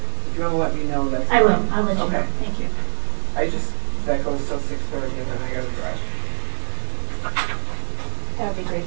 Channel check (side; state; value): left; silent; digital silence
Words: If you want to let me know, that's I will. fine. I'll let you know. Thank you. That goes till 6:30, and then I got to drive. That would be